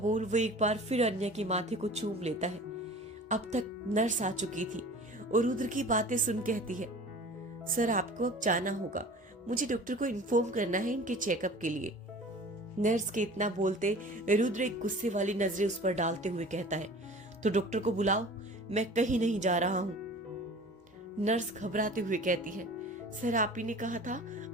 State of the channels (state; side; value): normal; both; correlation 0.42